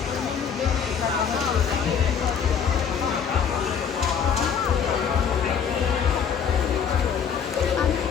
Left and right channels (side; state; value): right; quieter; 7.2 dB